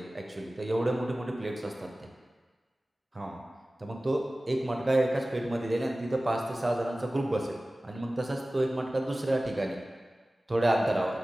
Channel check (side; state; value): both; normal; correlation 0.97